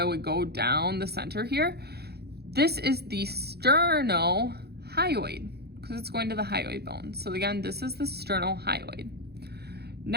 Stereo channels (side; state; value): left; late; 0.47 ms